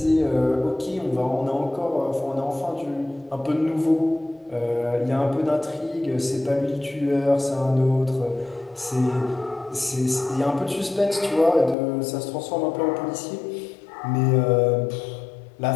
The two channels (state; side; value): drops out; right; at 11.8 s